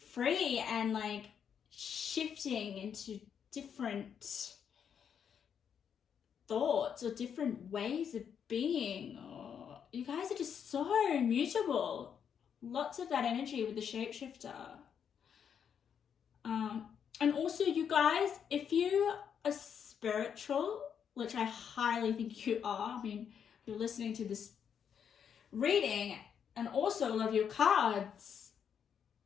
and like shifting into different thoughts or different ways of being. Or you guys are just so mutable. Lots of that energy with the shapeshifter. And also, you guys, if you are spiritual, which I highly think you are, I mean, you're listening to this reading, and also love your cards,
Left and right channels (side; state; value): right; quieter; 7.8 dB